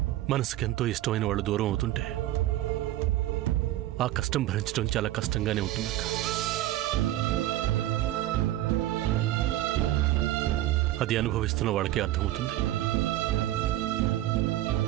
మనసుకెంతో ఇష్టమైన వాళ్ళు దూరం అవుతుంటే ఆ కష్టం భరించడం చాలా కష్టంగానే ఉంటుందక్క. అది అనుభవిస్తున్న వాళ్ళకే అర్థమవుతుంది.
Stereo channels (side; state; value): left; quieter; 14.7 dB